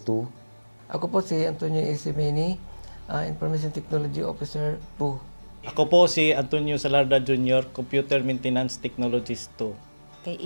2. Ako po si Antonio Isimeni, Information Technology Officer 2. Ako po si Antonio Salarda Jr., Computer Maintenance Technologist 2. Kay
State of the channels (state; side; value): inverted; both; correlation -1.00